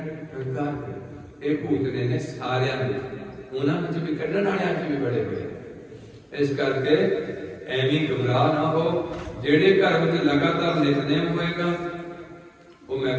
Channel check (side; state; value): both; identical; correlation 1.00